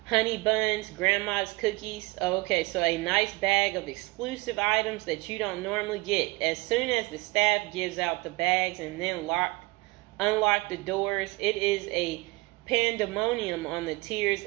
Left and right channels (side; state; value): left; quieter; 23.5 dB